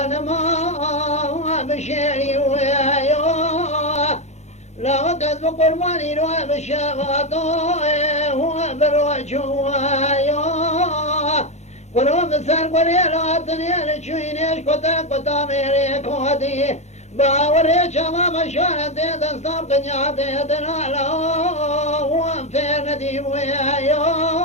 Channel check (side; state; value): right; late; 0.33 ms